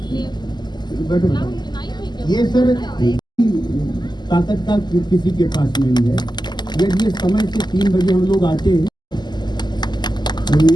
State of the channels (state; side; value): late; right; 0.21 ms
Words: बैठो, ये सर ताकत का किसी के पास नहीं है। यदि ये समय से 3 बजे हम लोग आते हैं तो